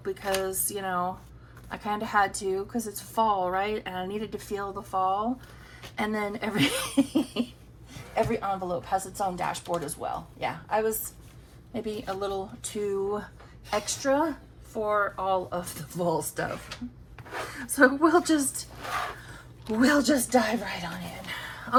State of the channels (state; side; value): identical; both; correlation 1.00